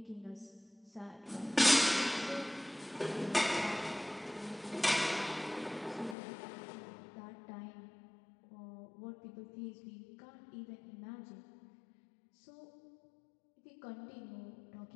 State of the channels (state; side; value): drops out; right; at 6.2 s